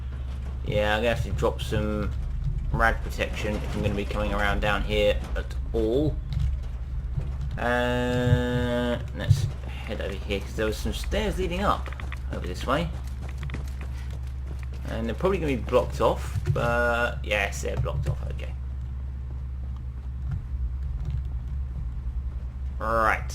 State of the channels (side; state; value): both; identical; correlation 1.00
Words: yeah, I'm gonna have to drop some rad protection if I'm gonna be coming around down here at all. Let's head over here because there was some stairs leading up over this way, and they're probably gonna be blocked off. But yes, they're blocked off. Okay. Right,